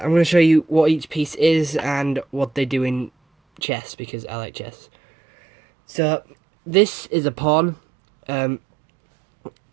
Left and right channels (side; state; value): left; drops out; at 3.6 s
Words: show you what each piece is and what they do in chess because I like chess. So this is a pawn.